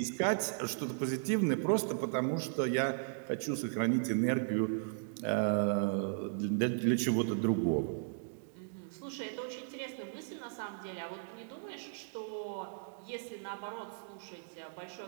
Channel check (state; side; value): silent; left; digital silence